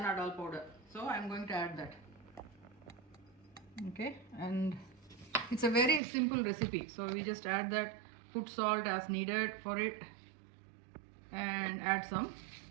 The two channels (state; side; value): drops out; left; at 6.0 s